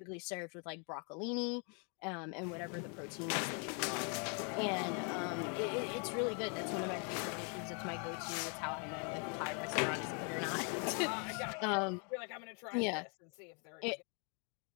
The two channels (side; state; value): right; quieter; 37.5 dB